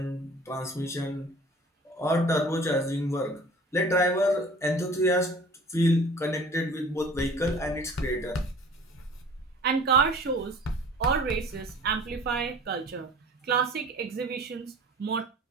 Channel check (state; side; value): normal; both; correlation 0.47